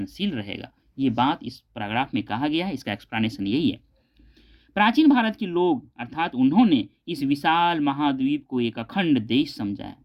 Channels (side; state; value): both; identical; correlation 1.00